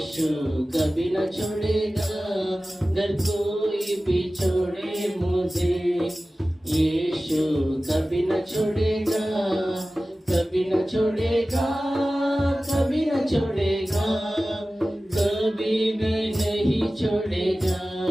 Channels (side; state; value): both; normal; correlation 0.96